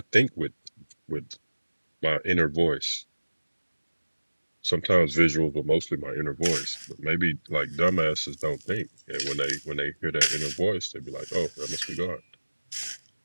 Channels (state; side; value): inverted; both; correlation -1.00